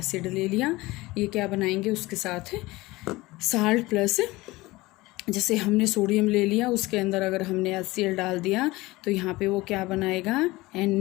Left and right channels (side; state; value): right; quieter; 20.4 dB